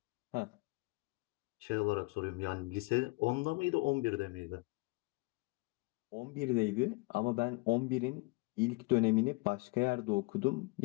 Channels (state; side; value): quieter; right; 26.0 dB